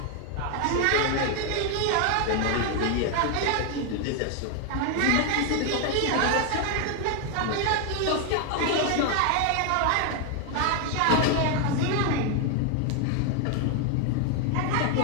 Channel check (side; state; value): both; different; correlation 0.01